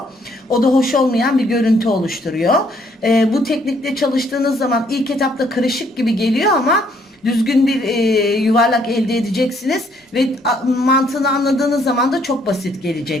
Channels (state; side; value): normal; both; correlation 0.67